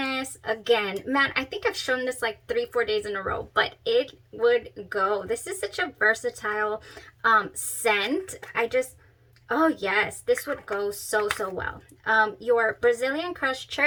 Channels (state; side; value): identical; both; correlation 1.00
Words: Again, man, I think I've shown this like 3-4 days in a row, but it would go. This is such a versatile scent. Oh yes, this would go so, so well. Your Brazilian Crush